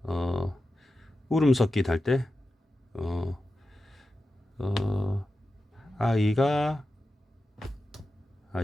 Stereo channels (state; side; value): normal; both; correlation 0.92